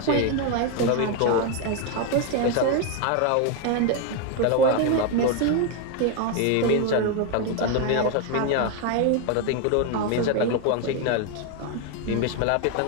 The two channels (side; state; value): both; different; correlation 0.01